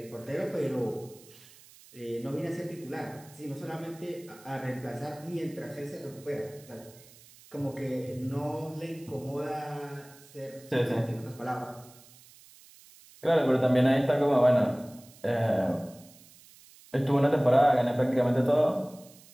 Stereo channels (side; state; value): right; noise; hiss, 23 dB below the sound